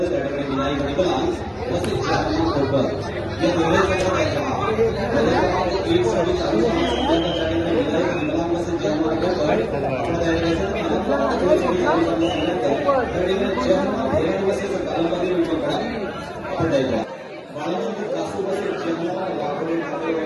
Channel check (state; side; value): identical; both; correlation 1.00